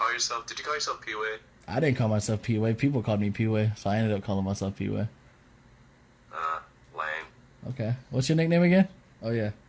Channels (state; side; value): identical; both; correlation 1.00